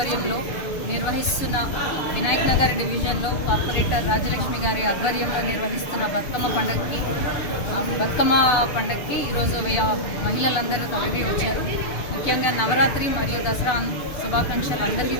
నిర్వహిస్తున్న వినాయక్ నగర్ డివిజన్లో కార్పొరేటర్ రాజలక్ష్మి గారి ఆధ్వర్యంలో నిర్వహిస్తున్న బతుకమ్మ పండగకి ఈరోజు మహిళలందరూ తరలి వచ్చారు. ముఖ్యంగా నవరాత్రి మరియు దసరా శుభాకాంక్షలు అందరికీ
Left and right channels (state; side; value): late; right; 6.7 ms